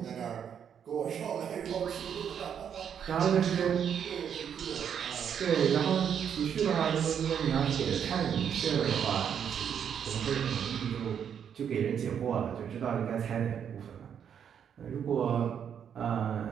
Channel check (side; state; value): left; quieter; 8.2 dB